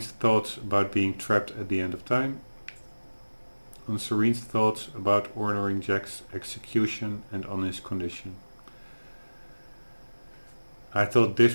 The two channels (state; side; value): inverted; both; correlation -1.00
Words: thoughts about being trapped at the end of time. On Serene's thoughts about ordering Jack's execution and on his condition. I thought